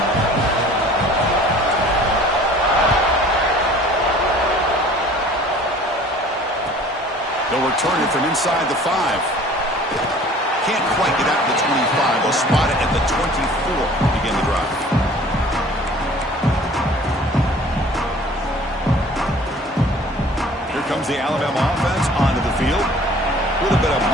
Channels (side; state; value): both; normal; correlation 0.49